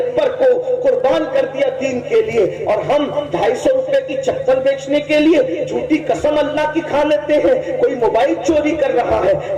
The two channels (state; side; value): identical; both; correlation 1.00